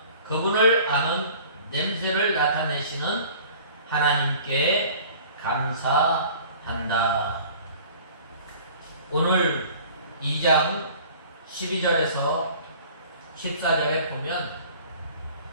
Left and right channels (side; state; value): both; inverted; correlation -0.47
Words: 그분을 아는 냄새를 나타내시는 하나님께 감사한다. 오늘 2장 12절에서 14절에 보면